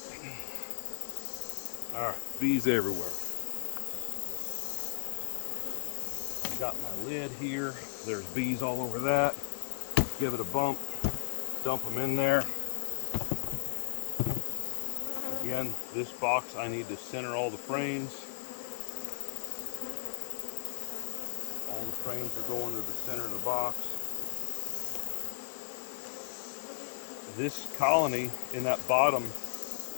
All right, bees everywhere. Got my lid here. There's bees all over that. Give it a bump. Dump them in there. Again, this box, I need to center all the frames. All the frames are going to the center of the box. This colony in that bottom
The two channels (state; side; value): silent; right; digital silence